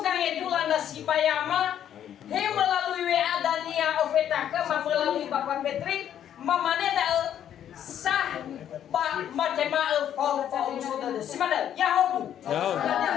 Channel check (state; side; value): quieter; right; 10.1 dB